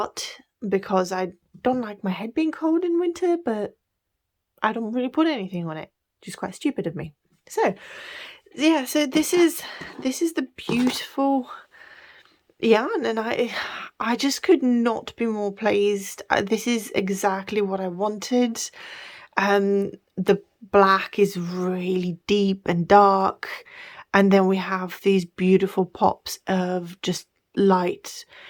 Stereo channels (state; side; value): identical; both; correlation 1.00